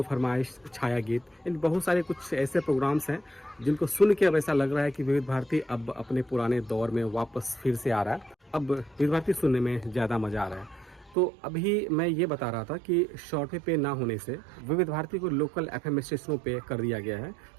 फरमाइश, छाया गीत, इन बहुत सारे कुछ ऐसे प्रोग्राम्स हैं जिनको सुन के अब ऐसा लग रहा है कि विविध भारती अब अपने पुराने दौर में वापस फिर से आ रहा है। अब विविध भारती सुनने में ज़्यादा मज़ा आ रहा है। तो अभी मैं ये बता रहा था कि शॉर्ट वे पे ना होने से विविध भारती को लोकल FM स्टेशनों पे कर दिया गया है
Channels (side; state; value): left; drops out; at 11.2 s